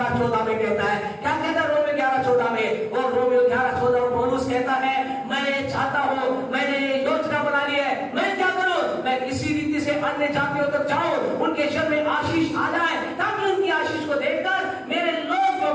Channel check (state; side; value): identical; both; correlation 1.00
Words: में कहता है। क्या कहता है रोमियो 11:14 में? और रोमियो 11:14 में पौलुस कहता है मैं चाहता हूं, मैंने योजना बना ली है, मैं क्या करूं? मैं किसी रीति से अन्य जातियों तक जाऊं, उनके जीवन में आशीष आ जाए, ताकि उनकी आशीष को देखकर मेरे लोग जो